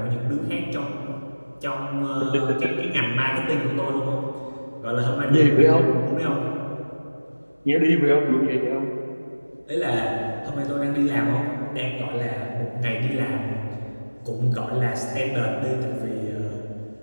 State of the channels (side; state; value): both; inverted; correlation -1.00